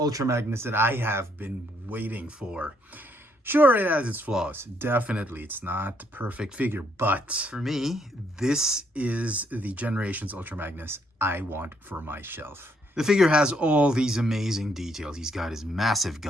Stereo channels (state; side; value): normal; both; correlation 0.71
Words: Magnus that I have been waiting for. Sure, it has its flaws. Definitely, it's not the perfect figure. But for me, this is the Generations Ultra Magnus I want for my shelf. The figure has all these amazing details. He's got his massive